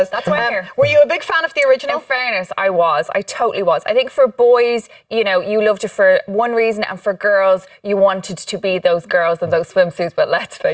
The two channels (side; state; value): both; identical; correlation 1.00